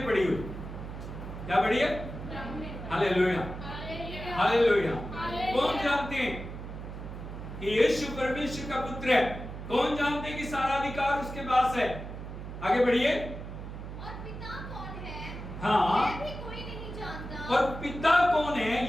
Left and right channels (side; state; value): right; noise; hum, 9 dB below the sound